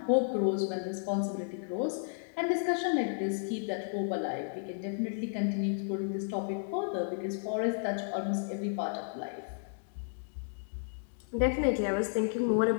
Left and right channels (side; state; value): right; silent; digital silence